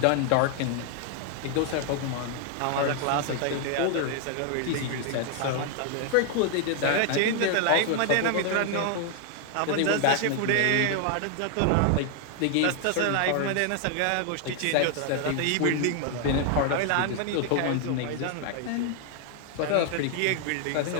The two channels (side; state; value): both; different; correlation 0.00